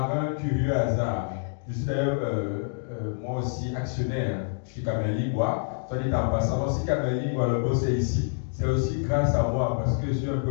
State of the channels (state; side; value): silent; right; digital silence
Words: un curieux hasard. Je suis d'ailleurs moi aussi actionnaire. Je suis Kamel Ligwa. Soit dit en passant, donc si Kamel Ligwa, le boss est ici, c'est aussi grâce à moi parce que je suis un peu